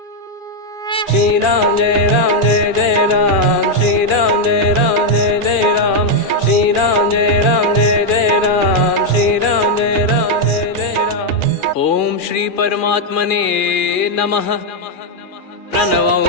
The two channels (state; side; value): late; right; 2.4 ms